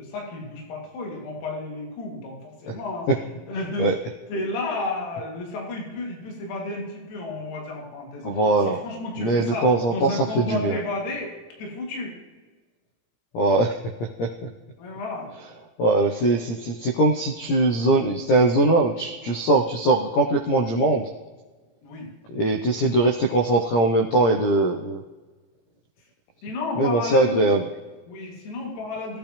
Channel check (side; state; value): right; late; 17 ms